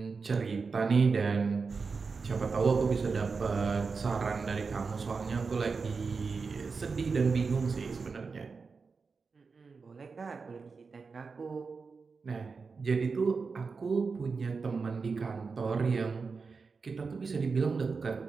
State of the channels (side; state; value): left; quieter; 4.8 dB